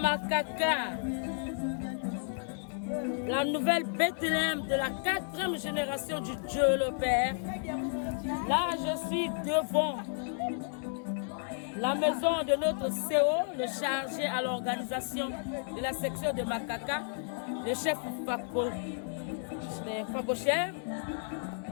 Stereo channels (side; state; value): right; silent; 56 dB below the other